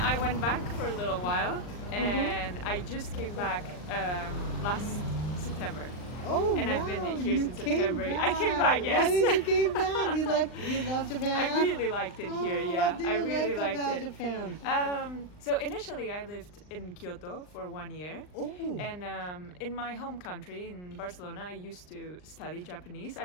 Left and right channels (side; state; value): right; late; 39 ms